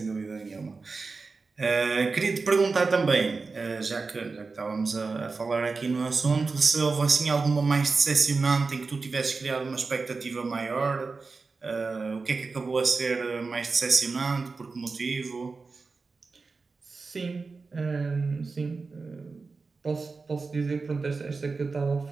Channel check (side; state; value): left; quieter; 4.2 dB